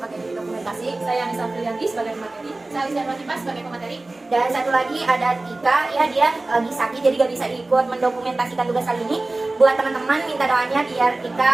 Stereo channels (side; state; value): left; quieter; 3.0 dB